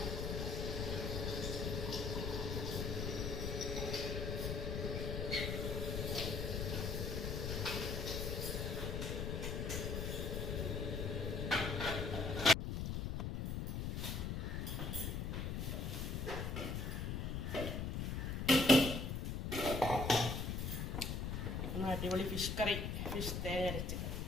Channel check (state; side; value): noise; left; rumble, 1 dB below the sound